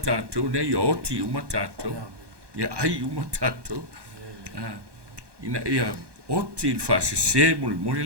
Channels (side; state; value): left; late; 1.2 ms